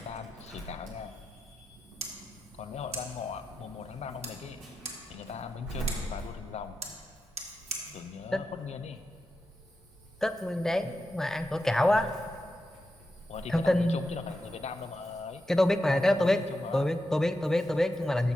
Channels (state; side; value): normal; both; correlation 0.88